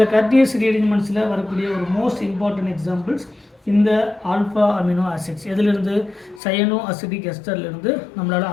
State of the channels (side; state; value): right; drops out; at 6.4 s